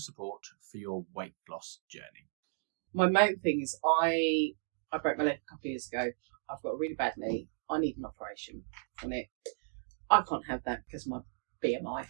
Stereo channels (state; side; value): silent; left; digital silence